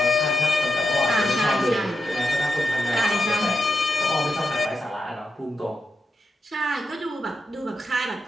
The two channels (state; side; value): normal; both; correlation 0.86